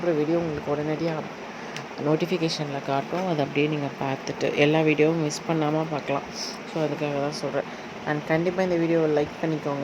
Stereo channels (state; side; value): identical; both; correlation 1.00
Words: வீடியோ உங்களுக்கு உடனடியாக நோட்டிஃபிகேஷனில் காட்டும். அதை அப்படியே நீங்கள் பார்த்துட்டு எல்லா வீடியோவும் மிஸ் பண்ணாமல் பார்க்கலாம். ஸோ அதுக்காக தான் சொல்கிறேன். அண்ட் கண்டிப்பாக இந்த வீடியோவை லைக்